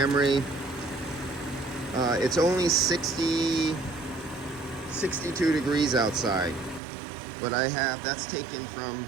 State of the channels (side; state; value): left; drops out; at 6.8 s